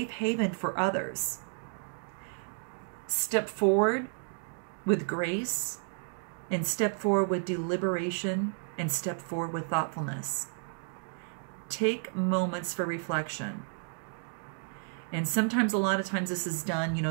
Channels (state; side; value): silent; left; 56 dB below the other